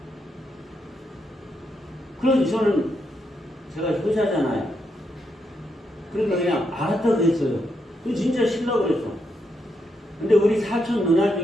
그래서 저는 제가 효자잖아요. 그러니까 그냥 알았다고 했어요. 그 진짜 쉬려고 그랬어. 근데 우리 사촌 누나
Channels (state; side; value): normal; both; correlation 0.81